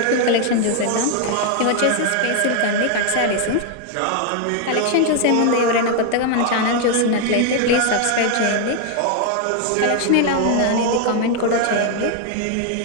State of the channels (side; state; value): both; different; correlation 0.00